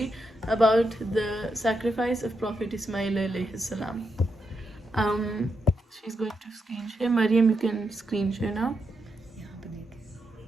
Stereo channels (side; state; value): both; normal; correlation 0.83